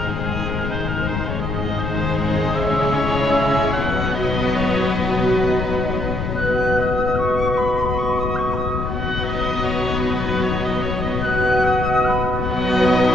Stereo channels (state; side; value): noise; left; rumble, 3 dB below the sound